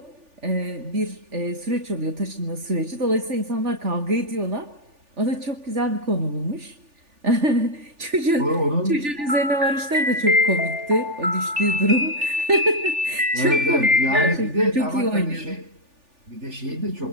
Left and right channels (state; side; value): late; left; 3.4 ms